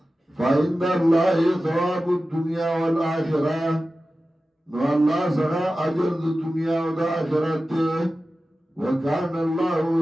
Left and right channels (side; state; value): both; normal; correlation 0.94